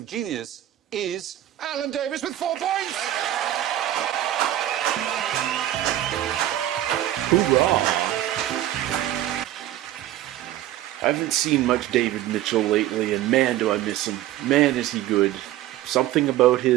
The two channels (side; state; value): left; quieter; 13.3 dB